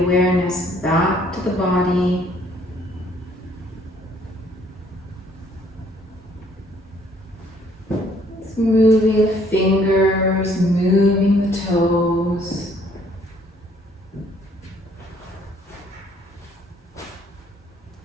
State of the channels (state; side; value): normal; both; correlation 0.63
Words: back to the body. It's moving the fingers, moving the toes.